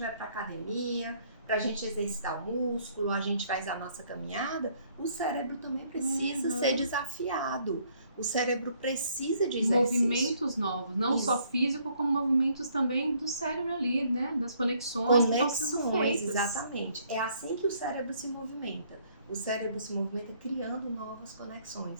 para academia, para a gente exercitar o músculo, a gente faz a nossa caminhada, o cérebro também precisa ser desafiado. O cérebro precisa de exercício. Movimentos novos, não só físico, como movimentos também do cérebro ali, né? Das conexões que estão sendo feitas. Exatamente. É assim que o cérebro se movimenta. O cérebro se movimenta criando novas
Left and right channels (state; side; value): inverted; both; correlation -0.66